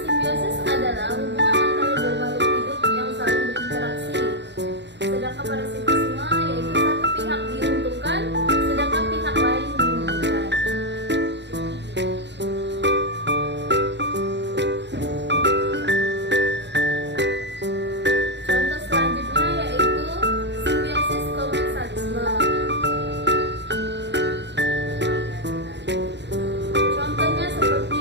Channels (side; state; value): left; late; 0.51 ms